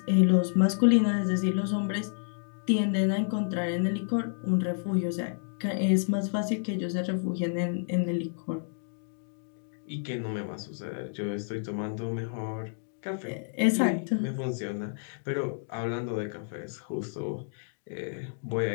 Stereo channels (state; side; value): silent; right; digital silence